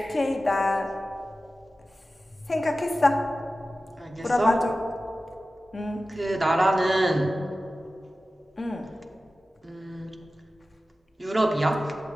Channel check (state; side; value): normal; both; correlation 0.95